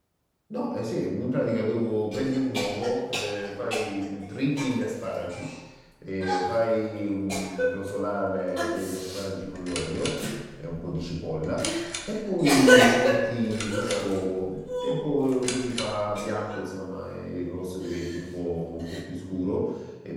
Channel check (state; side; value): identical; both; correlation 1.00